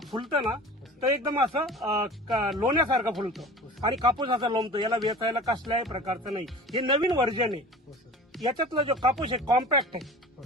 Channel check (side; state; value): both; normal; correlation 0.38